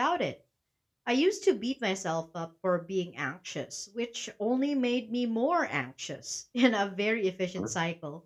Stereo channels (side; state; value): both; identical; correlation 1.00